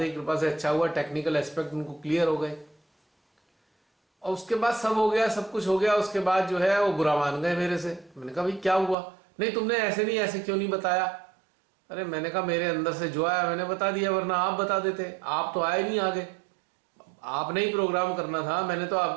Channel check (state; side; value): drops out; left; at 9.0 s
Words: की कृपा से अच्छा हुआ, टेक्निकल एस्पेक्ट उनको क्लियर हो गए, और उसके बाद सब हो गया, सब कुछ हो गया। उसके बाद जो है वो बुरा मान गए मेरे से। मैंने कहा भाई क्या हुआ, नहीं तुमने ऐसे नहीं, ऐसे क्यों नहीं बताया। अरे मैंने कहा मेरे अंदर से जो आया मैंने बता दिया, वरना आप बता देते, आप तो आए नहीं आगे, आपने ही प्रोग्राम करना था, मैंने तो